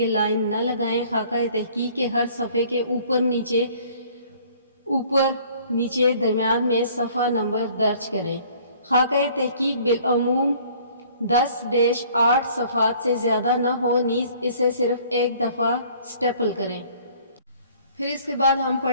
لائن نہ لگائیں۔ خاکہ تحقیق کے ہر صفحے کے اوپر نیچے درمیان میں صفحہ نمبر درج کریں۔ خاکہ تحقیق بالعموم 10-8 صفحات سے زیادہ نہ ہو، نیز اسے صرف ایک دفعہ سٹیپل کریں۔ پھر اس کے بعد ہم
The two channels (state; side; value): inverted; both; correlation -0.55